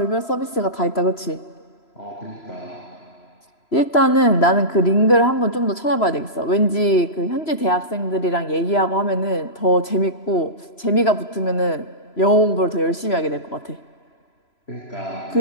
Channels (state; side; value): late; right; 3.0 ms